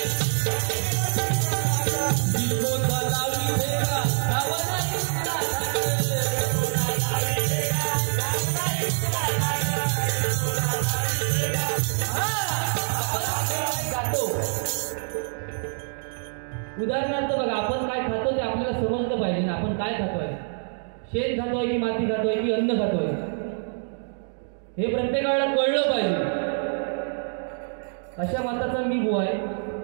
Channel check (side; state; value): left; silent; 61 dB below the other